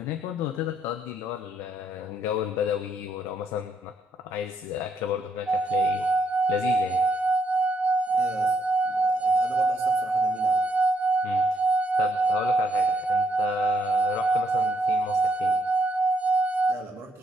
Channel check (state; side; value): normal; both; correlation 0.74